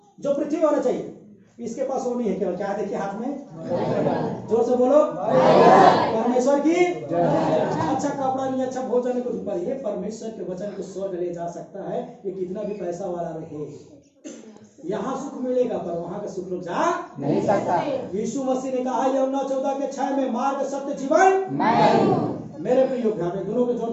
जो पृथ्वी में होना चाहिए। इसके पास वो नहीं है। केवल क्या देखिए हाथ में, जोर से बोलो, परमेश्वर की। अच्छा कपड़ा नहीं, अच्छा भोजन नहीं, कुछ ऊपर। ये परमेश्वर के वचन को स्वर्ग ले जा सकता है, ये कितना भी पैसा वाला रहे। यहाँ सुख मिलेगा पर वहां का सुख लोग जा नहीं सकता। यीशु मसीह ने कहा यूहन्ना 14:6 में, मार्ग सत्य जीवन मेरे प्रियो, दोनों के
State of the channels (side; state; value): both; identical; correlation 1.00